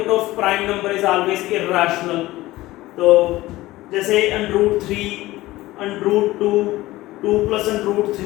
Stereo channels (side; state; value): right; quieter; 17.8 dB